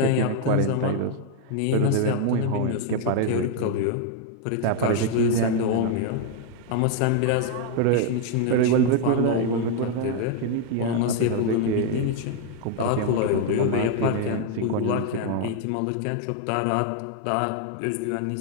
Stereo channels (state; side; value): different; both; correlation 0.00